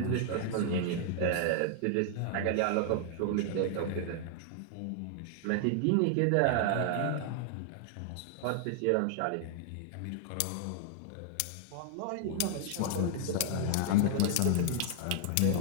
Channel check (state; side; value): different; both; correlation 0.00